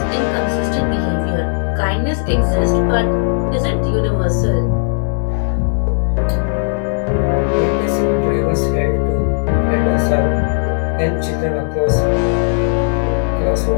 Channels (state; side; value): silent; right; digital silence